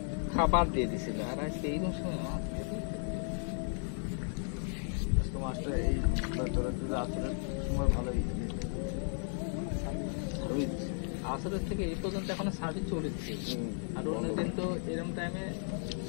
খাবার দিয়ে দিছিল, আর আজকে এইরকম সময় মাছ দিয়ে দিছে। আজকে মাছটা এই তোরা যদি আসরের সময় ভালোই ভালোই দিছে। আসরের থেকে এই পর্যন্ত এখনো সার্ভিস চলেছে, আর অন্যদিন তো এরকম টাইমে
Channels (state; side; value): silent; right; 55 dB below the other